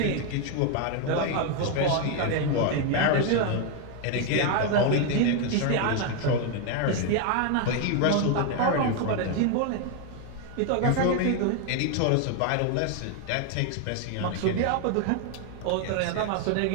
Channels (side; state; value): both; different; correlation 0.01